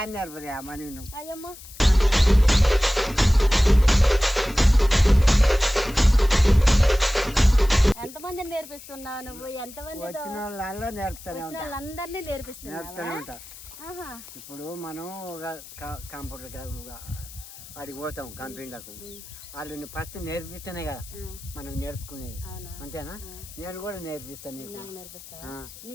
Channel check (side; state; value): left; noise; hiss, 17 dB below the sound